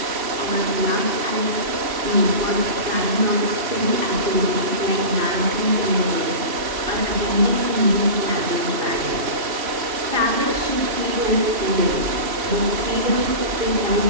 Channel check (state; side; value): late; left; 2.8 ms